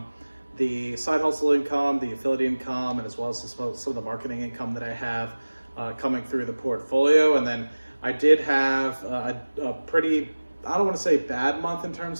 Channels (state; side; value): inverted; both; correlation -1.00